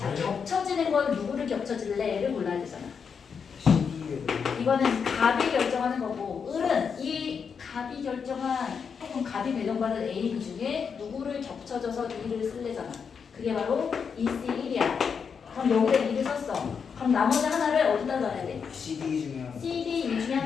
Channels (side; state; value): right; quieter; 6.3 dB